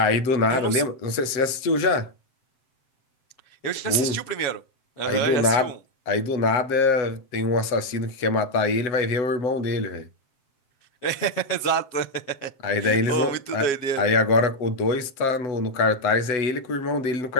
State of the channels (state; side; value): late; right; 7.6 ms